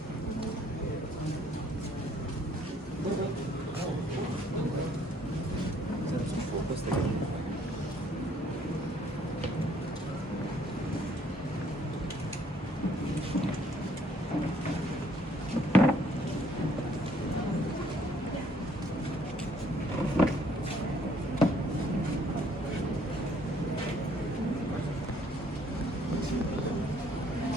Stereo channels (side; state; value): both; normal; correlation 0.64